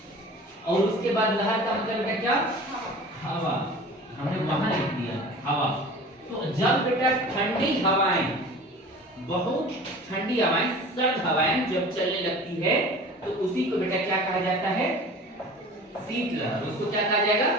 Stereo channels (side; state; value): both; normal; correlation 0.40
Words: और उसके बाद लहर का मतलब बेटा क्या, हवा, हमने वहां लिख दिया हवा। तो जब बेटा ठंडी हवाएं, बहुत ठंडी हवाएं, सर्द हवाएं जब चलने लगती है तो उसी को बेटा क्या कहा जाता है, शीतलहर। उसको क्या कहा जाएगा,